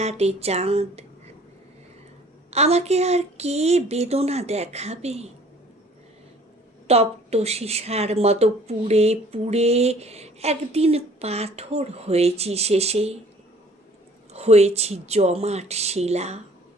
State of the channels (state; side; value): normal; both; correlation 0.54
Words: চাঁদ। আমাকে আর কে বেদনা দেখাবে? তপ্ত সীসার মতো পুড়ে পুড়ে একদিন পাথর হয়েছি শেষে, হয়েছি জমাট শিলা।